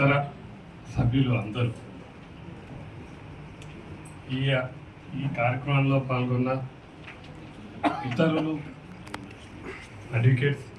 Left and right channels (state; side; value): identical; both; correlation 1.00